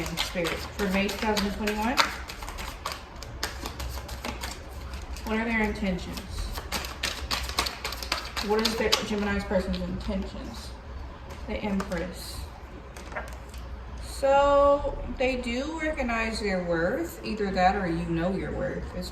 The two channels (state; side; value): identical; both; correlation 1.00